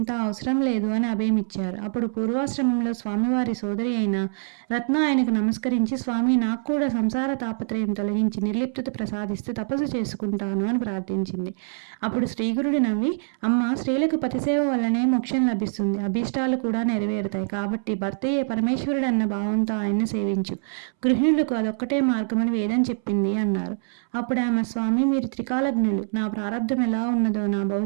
అవసరం లేదు అని అభయమిచ్చారు. అప్పుడు పూర్వాశ్రమంలో స్వామివారి సోదరి అయిన రత్న ఆయనకు నమస్కరించి, స్వామి, నాకు కూడా సంసార తాపత్రయం తొలగించి నిర్లిప్తత ప్రసాదిస్తూ తపస్సు తపస్సు చేసుకుంటాను అని ప్రార్థించింది. అప్పుడు శ్రీగురుడు నవ్వి, అమ్మ, స్త్రీలకు పతిసేవ వల్లనే మోక్షం లభిస్తుంది, అభీష్టాలు కూడా నెరవేరుతాయి. కాబట్టి భర్తయే పరమేశ్వరుడు అన్న భావంతో ఆయన్ను సేవించు. గృహిణులకు అదొక్కటే మార్గమని వేదం చెప్పింది అన్నారు. అప్పుడు ఆమె, స్వామి, మీరు త్రికాలజ్ఞులు, నా ప్రారంధం ఎలా ఉన్నదో, నా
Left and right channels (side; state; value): left; silent; 62 dB below the other